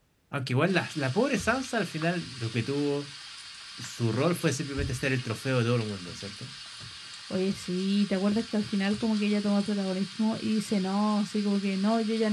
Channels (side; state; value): both; identical; correlation 1.00